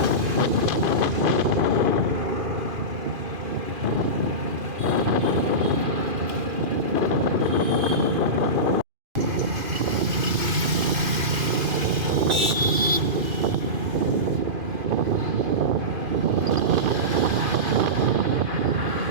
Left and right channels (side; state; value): left; late; 2.5 ms